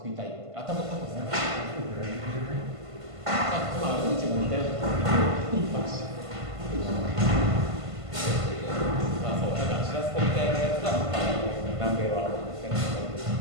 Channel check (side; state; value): left; late; 1.5 ms